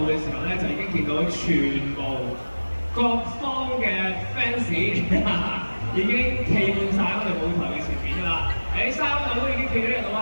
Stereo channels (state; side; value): inverted; both; correlation -1.00